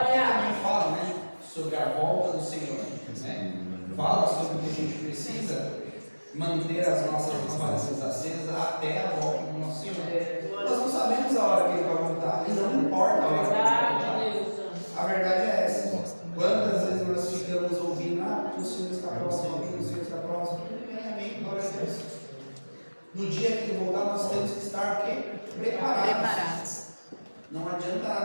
também fala, né, sobre a volta do Senhor. Né? Fala sobre que a gente precisa manter as nossas lamparinas acesas até a volta do nosso Senhor. Nós não sabemos a hora que Ele vai voltar, e não importa a hora que Ele vai voltar. A verdade é essa. Quantas vezes nós ficamos ouvindo: o Senhor está próximo, o Senhor está próximo. Amém, glória a Deus. No dia que Ele voltar, nós temos que estar o quê? Preparados. Não adianta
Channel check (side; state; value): both; inverted; correlation -1.00